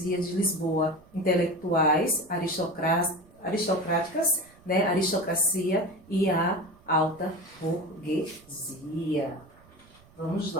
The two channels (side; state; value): right; noise; rumble, 27 dB below the sound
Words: de Lisboa, intelectuais, aristocráticas, né, aristocracia e a alta burguesia. Vamos